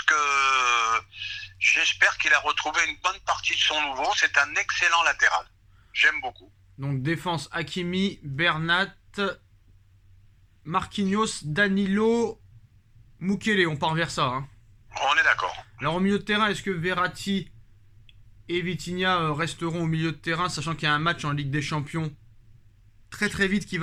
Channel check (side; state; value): both; identical; correlation 1.00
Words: que j'espère qu'il a retrouvé une bonne partie de son nouveau. C'est un excellent latéral. J'aime beaucoup. Donc défense Hakimi, Bernat, Marquinhos, Danilo, Mukiele, on part vers ça, hein. On est d'accord. Alors au milieu de terrain, est-ce que Verratti et Vitinha resteront au milieu de terrain, sachant qu'il y a un match en Ligue des Champions très très vite qui